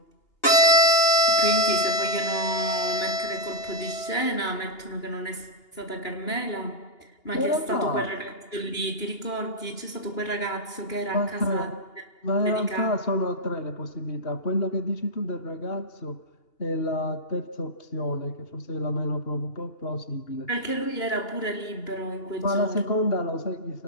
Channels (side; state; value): right; late; 2.8 ms